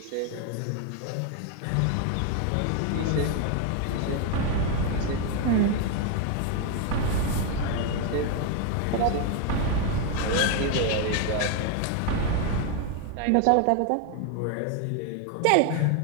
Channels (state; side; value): different; both; correlation 0.01